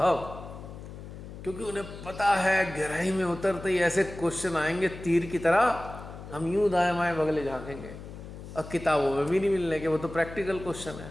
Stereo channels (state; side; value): noise; left; hum, 13 dB below the sound